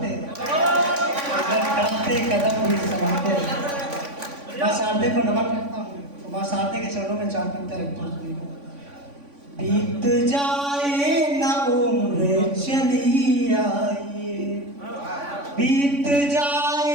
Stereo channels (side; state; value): left; late; 3.5 ms